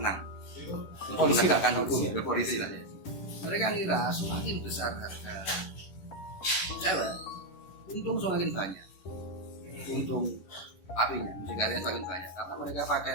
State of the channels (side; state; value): right; late; 11 ms